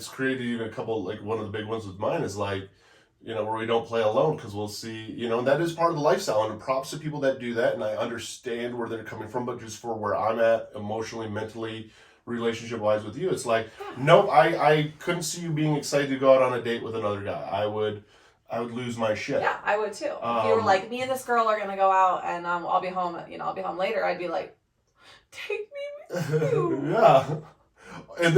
created even a couple, like one of the big ones with mine is like, where we don't play alone because we'll see, and that is part of the lifestyle. And props to people that do that. And I understand where they're coming from, but just for where I'm at emotionally, mentally, relationship wise with you, it's like, nope, I couldn't see you being excited to go out on a date with another guy. I would lose my shit. Yeah, I would too. If you were like, me and this girl are going to go out and I'll be home, I'll be home later, I'd be like, take me with you. Yeah. And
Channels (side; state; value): both; identical; correlation 1.00